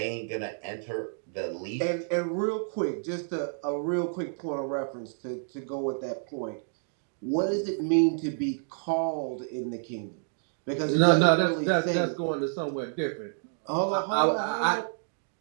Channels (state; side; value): silent; left; digital silence